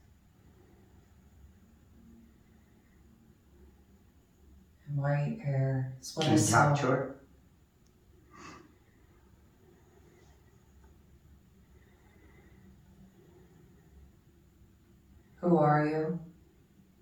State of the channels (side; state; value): both; identical; correlation 1.00